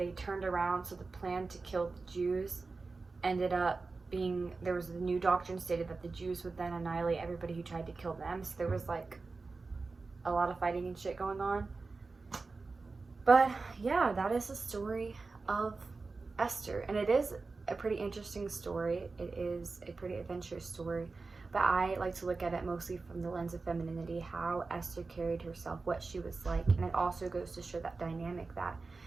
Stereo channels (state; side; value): quieter; left; 4.0 dB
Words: turned around, so the plan to kill the Jews ended up being, there was a new doctrine stated that the Jews would then annihilate everybody who tried to kill them. So there was like a lot of fighting and shit going on. But yeah, that is the story of Esther. And it is a pretty interesting story. It is a pretty adventurous story, but I like to look at it mostly from the lens of femininity, how Esther carried herself, what she was like. And it also goes to show that dynamic, that